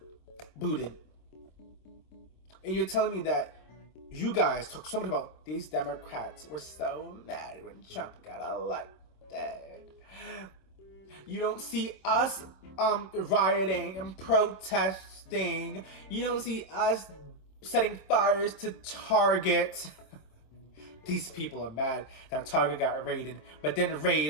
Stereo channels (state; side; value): late; right; 25 ms